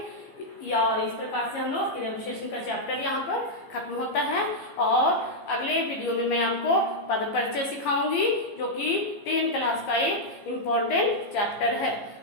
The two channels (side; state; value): right; late; 15 ms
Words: और इस प्रकार से हम लोग क्रिया विशेषण का चैप्टर यहाँ पर खत्म होता है और अगले वीडियो में मैं आपको पद परिचय सिखाऊंगी जो कि 10th क्लास का एक इम्पोर्टेंट चैप्टर है।